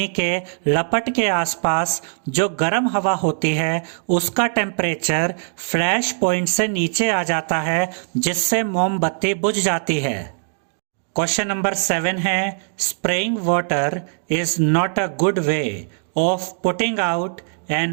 कि लपट के आसपास जो गर्म हवा होती है उसका टेम्परेचर फ्लैश पॉइंट से नीचे आ जाता है, जिससे मोमबत्ती बुझ जाती है। क्वेश्चन नंबर 7 है, spraying water is not a good way of putting out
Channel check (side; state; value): left; silent; digital silence